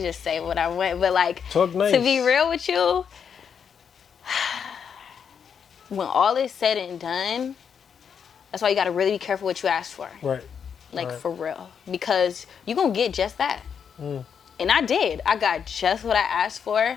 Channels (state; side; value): quieter; right; 7.2 dB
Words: just say what I went. But like, talk nice. To be real with you, when all is said and done, that's why you gotta really be careful what you ask for. Like, for real. Because you're gonna get just that. And I did. I got just what I asked